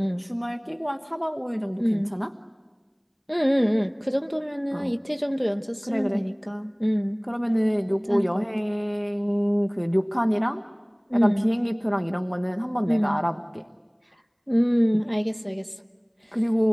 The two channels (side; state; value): both; identical; correlation 1.00